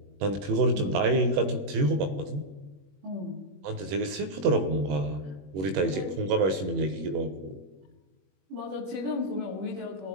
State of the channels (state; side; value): late; left; 21 ms